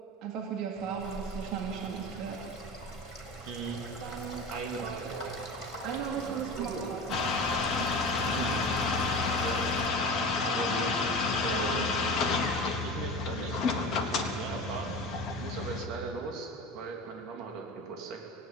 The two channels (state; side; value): normal; both; correlation 0.31